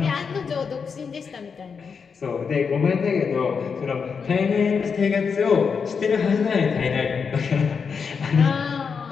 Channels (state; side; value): quieter; right; 5.9 dB